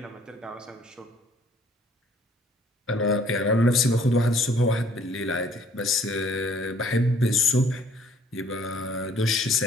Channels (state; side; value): normal; both; correlation 0.59